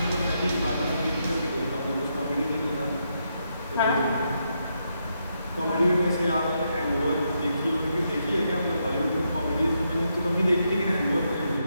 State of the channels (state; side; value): inverted; both; correlation -0.80